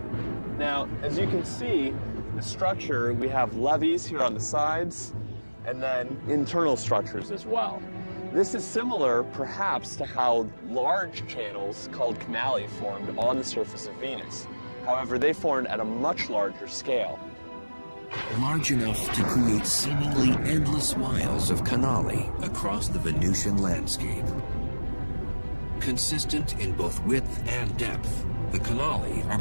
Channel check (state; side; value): inverted; both; correlation -1.00